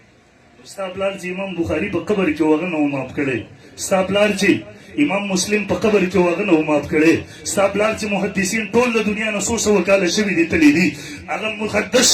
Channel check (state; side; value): identical; both; correlation 1.00